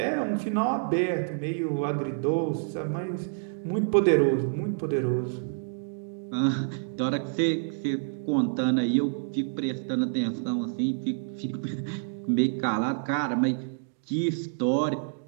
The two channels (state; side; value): silent; left; digital silence